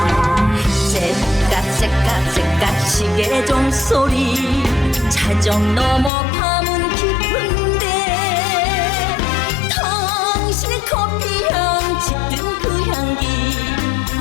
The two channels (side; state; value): right; drops out; at 6.1 s